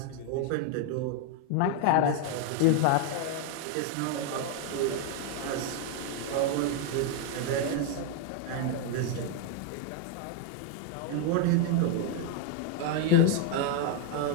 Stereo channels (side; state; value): both; different; correlation 0.00